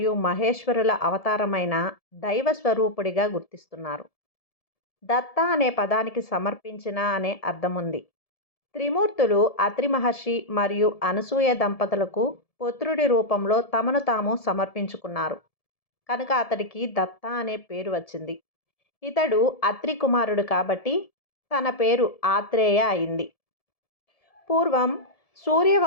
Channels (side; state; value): right; late; 1.7 ms